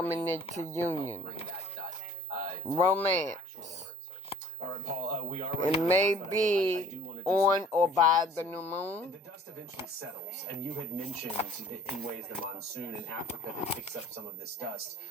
into union. Romance. All right, Paul, we are It may be on or by the new moon. The dust eventually settles, and you had mentioned in ways the monsoon in Africa that picks up some of this dust.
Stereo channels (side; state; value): both; normal; correlation 0.52